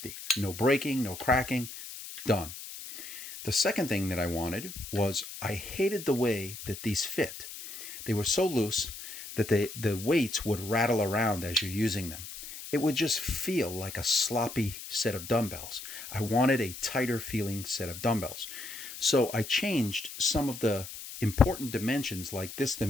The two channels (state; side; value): noise; left; hiss, 11 dB below the sound